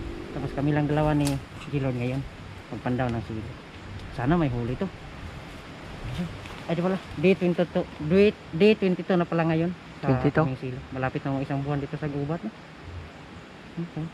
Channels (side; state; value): both; identical; correlation 1.00